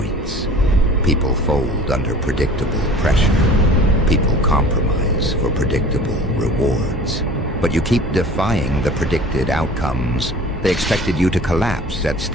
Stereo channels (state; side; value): normal; both; correlation 0.45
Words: People fold under predictable pressure. People compromise for predictable rewards. But you keep defying the predicted outcomes. They expected you to collapse at